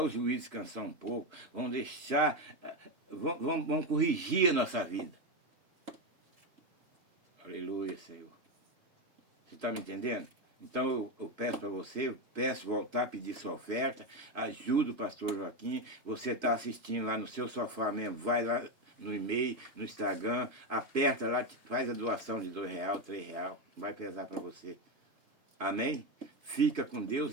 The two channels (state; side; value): late; left; 3.1 ms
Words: os juízes descansar um pouco, vamos deixar, vamos corrigir a nossa vida. Aleluia, Senhor. Você está me entendendo? Então eu peço para você, eu peço voltar a pedir sua oferta, ajuda o pastor Joaquim, você está assistindo lá no seu sofá mesmo, vai lá no e-mail, no Instagram, aperta lá, faz a doação de R$2, R$3, vai pesar para você. Amém? Fica com